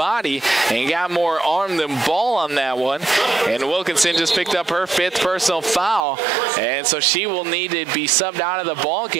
and got more arm than ball on that one, and Wilkinson just picked up her 5th personal foul, and so she will need to be subbed out of the ball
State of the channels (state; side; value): drops out; left; at 6.0 s